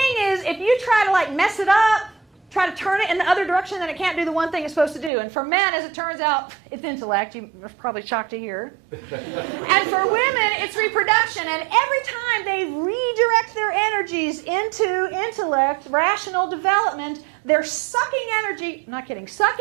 is, if you try to like mess it up, try to turn it in the other direction, then it can't do the one thing it's supposed to do. And for men, as it turns out, it's intellect. You're probably shocked to hear. And for women, it's reproduction. And every time they redirect their energies into intellect, rational development, they're sucking energy, I'm not kidding,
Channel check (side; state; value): left; drops out; at 5.1 s